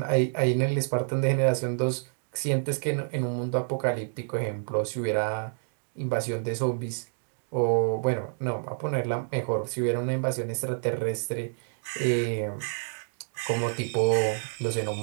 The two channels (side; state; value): left; silent; digital silence